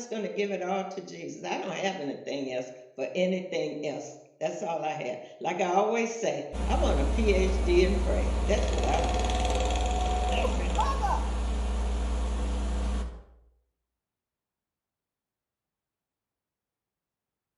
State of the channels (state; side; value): identical; both; correlation 1.00